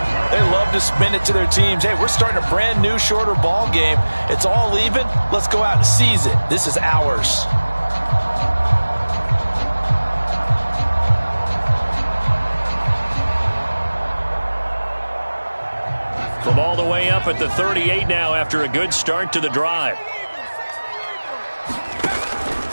They love to spin it to their teams. Hey, we're starting a brand new, shorter ball game. It's all even. Let's go out and seize it. This is ours. From all the way up at the 38 now after a good start to the drive.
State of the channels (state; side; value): inverted; both; correlation -1.00